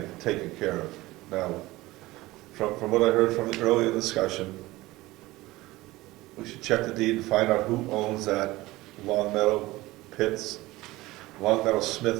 taken care of. Now, from what I heard from the earlier discussion, we should check the deed and find out who owns that Long Meadow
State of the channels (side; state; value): left; quieter; 19.1 dB